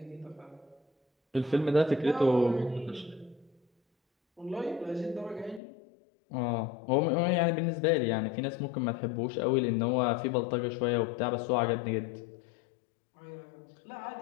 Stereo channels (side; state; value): right; drops out; at 5.6 s